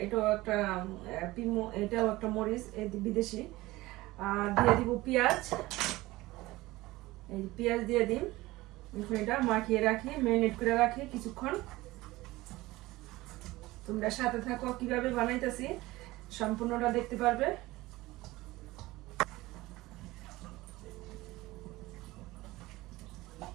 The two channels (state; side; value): quieter; left; 19.1 dB